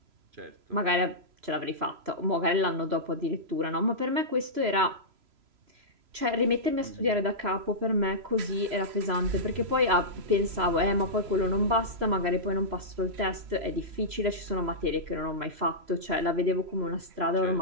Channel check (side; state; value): left; late; 3.0 ms